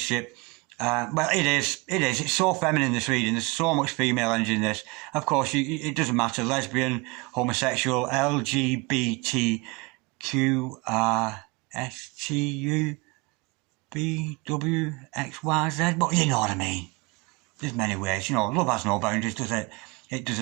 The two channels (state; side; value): quieter; left; 26.1 dB